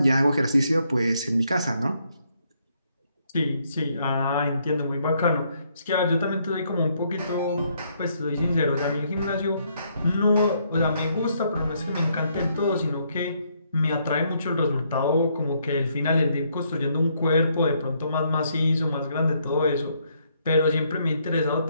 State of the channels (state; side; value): inverted; both; correlation -0.72